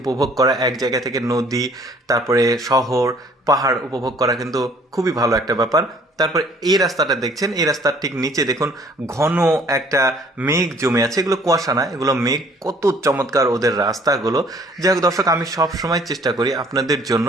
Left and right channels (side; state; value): both; normal; correlation 0.57